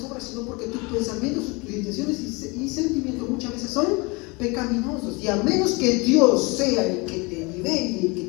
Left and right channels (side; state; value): right; quieter; 27.0 dB